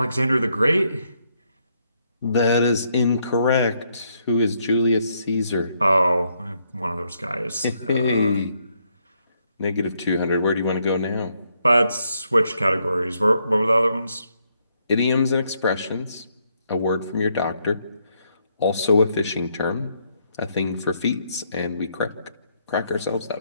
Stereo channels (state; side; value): inverted; both; correlation -0.74